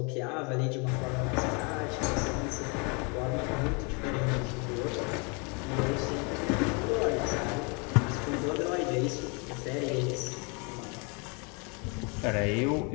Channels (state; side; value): quieter; right; 33.1 dB